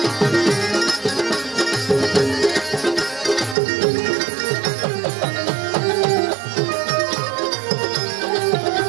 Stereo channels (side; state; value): left; drops out; at 3.6 s